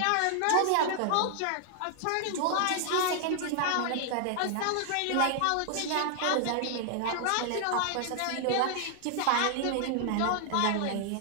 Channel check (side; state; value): both; different; correlation 0.00